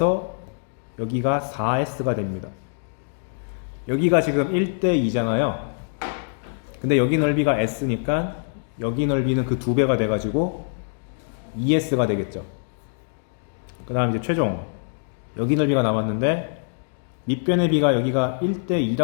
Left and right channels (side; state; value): right; silent; digital silence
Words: 여기가 4S가 됩니다. 여기가 지금 1대 2잖아요. 근데 여기 넓이가 S니까 여기 넓이는 그 2배가 돼가지고 2S가 되겠죠. 그 다음 이제 최종 여기 넓이가 남았는데 밑변의 비가 여기가 1대